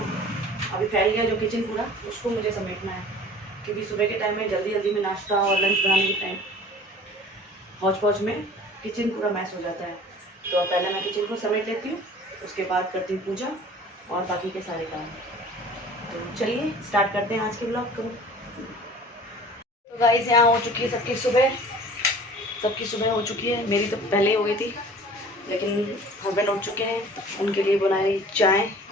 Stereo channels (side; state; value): both; normal; correlation 0.46